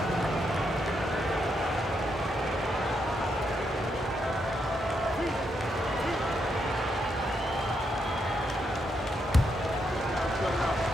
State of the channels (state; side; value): normal; both; correlation 0.80